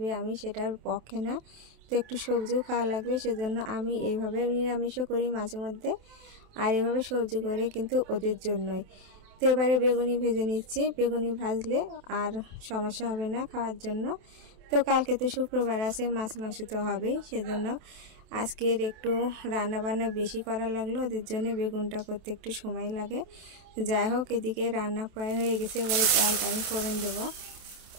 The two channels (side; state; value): left; late; 27 ms